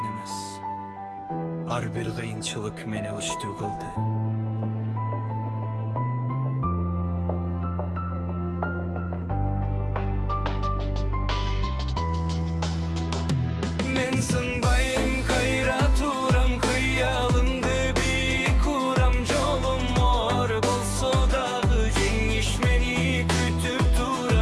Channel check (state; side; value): identical; both; correlation 1.00